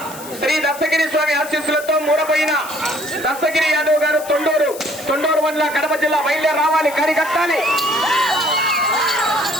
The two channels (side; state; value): left; noise; hiss, 15 dB below the sound